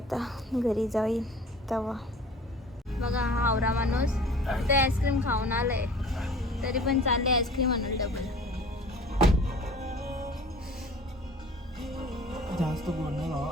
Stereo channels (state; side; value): normal; both; correlation 0.46